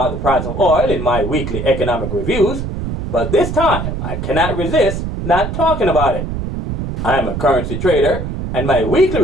the price of oil in my weekly economic reviews, but this time I cannot resist not talking about it. I am a currency trader, and my weekly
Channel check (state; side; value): noise; right; rumble, 5 dB below the sound